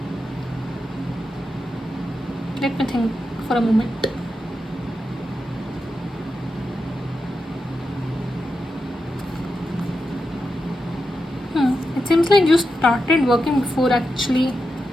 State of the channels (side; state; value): both; normal; correlation 0.88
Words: let me think for a moment. It seems like you started working before actually